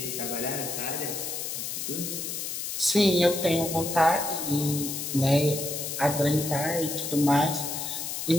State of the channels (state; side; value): noise; left; hiss, 4 dB below the sound